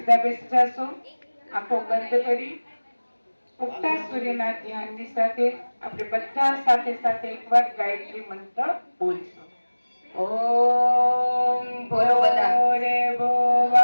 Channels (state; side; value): inverted; both; correlation -1.00